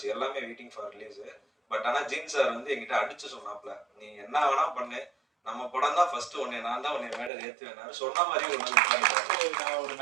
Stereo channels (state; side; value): drops out; left; at 7.3 s